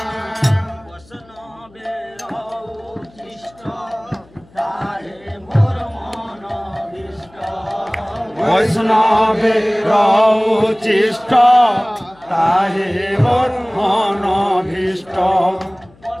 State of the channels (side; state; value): left; noise; hum, 28 dB below the sound